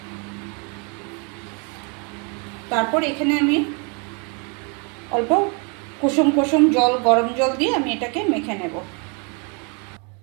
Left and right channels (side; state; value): left; quieter; 34.7 dB